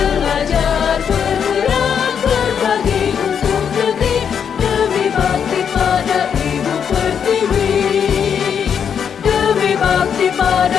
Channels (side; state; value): right; quieter; 7.6 dB